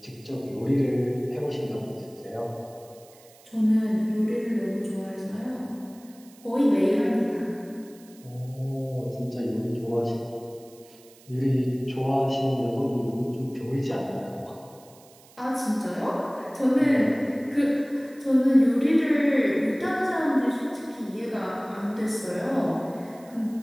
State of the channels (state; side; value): noise; right; hiss, 25 dB below the sound